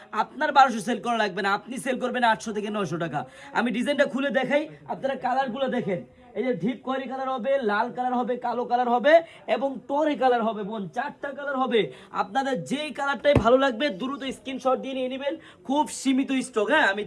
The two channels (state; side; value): identical; both; correlation 1.00